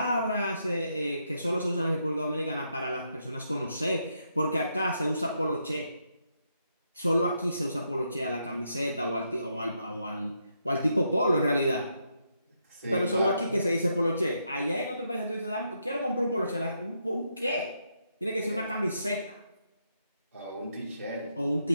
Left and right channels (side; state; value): both; inverted; correlation -0.79